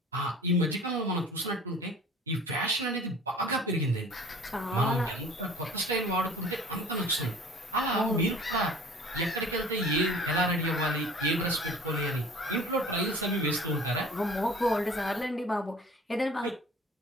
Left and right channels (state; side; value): normal; both; correlation 0.46